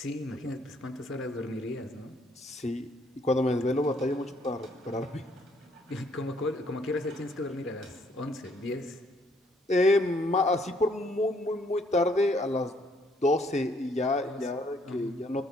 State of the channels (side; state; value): both; normal; correlation 0.67